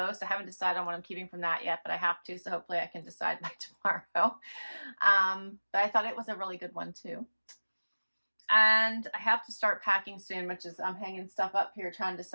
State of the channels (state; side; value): inverted; both; correlation -1.00